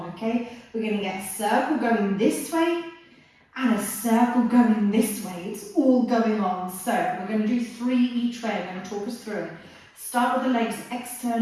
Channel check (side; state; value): both; identical; correlation 1.00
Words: okay? We're going to get a circle going this way and a circle going this way. It's all going on. So we're going to do 3 each way. I'm going to talk us through it. Start with the legs